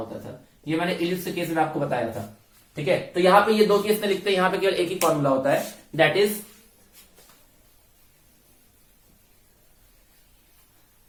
था। ये मैंने इलिप्स के केस में आपको बताया था, ठीक है। तो यहाँ पे ये दो केस में लिखते हैं, यहाँ पे केवल एक ही फॉर्मूला होता है, दैट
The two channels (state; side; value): identical; both; correlation 1.00